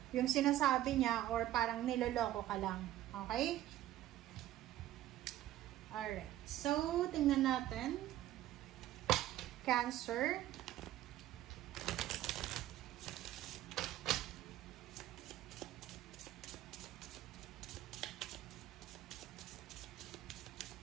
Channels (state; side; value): quieter; left; 13.7 dB